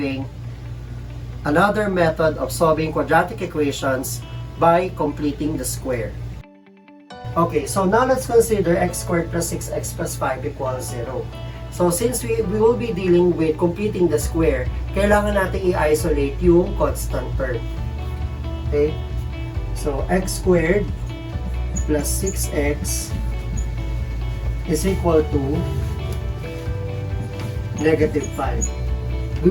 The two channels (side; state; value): both; identical; correlation 1.00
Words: another method of solving quadratic equations by completing the square. Okay, so now let's consider x squared plus 6x plus 5 equals 0. So since we will be dealing with completing the square, kailangan natin i-isolate yung constant term. Okay, so x squared plus 6x is equal to negative 5. We